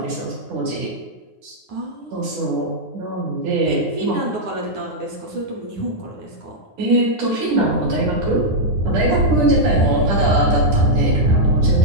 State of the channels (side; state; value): left; late; 9.7 ms